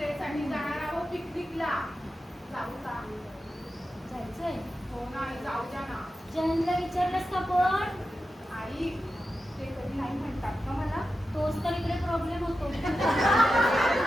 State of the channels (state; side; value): normal; both; correlation 0.91